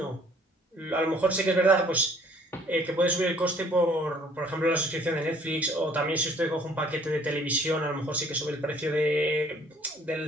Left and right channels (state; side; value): normal; both; correlation 0.57